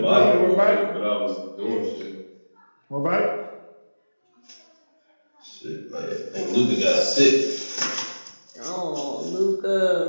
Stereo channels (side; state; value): both; inverted; correlation -1.00